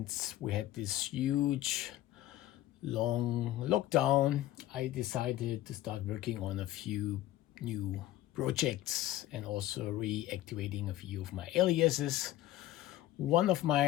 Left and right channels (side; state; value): right; quieter; 14.4 dB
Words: we had this huge, long lockdown, I decided to start working on a few new projects and also reactivating a few of my aliases. One of